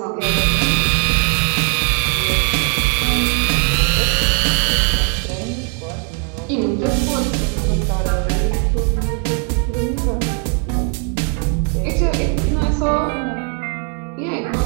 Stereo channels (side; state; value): left; quieter; 38.6 dB